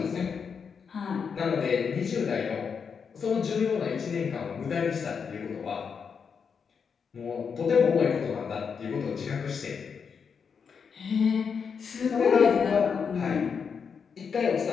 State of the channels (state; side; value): quieter; right; 6.2 dB